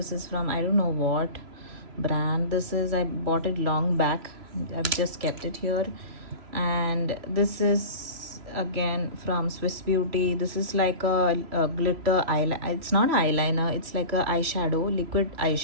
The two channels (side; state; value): left; late; 2.9 ms